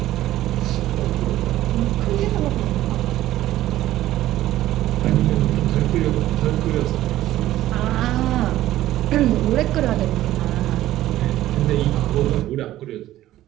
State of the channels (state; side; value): quieter; left; 14.4 dB